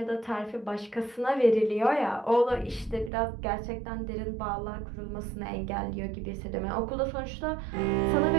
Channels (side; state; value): left; drops out; at 3.1 s